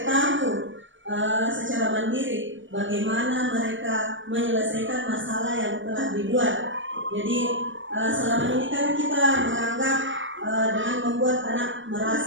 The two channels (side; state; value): left; late; 0.56 ms